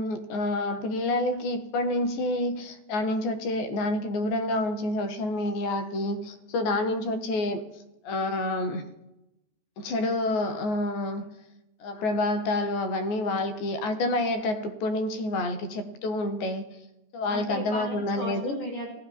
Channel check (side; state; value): right; late; 14 ms